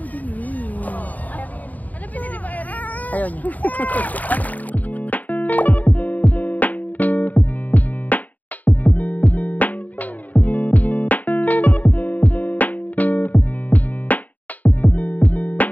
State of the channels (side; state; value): right; late; 0.077 ms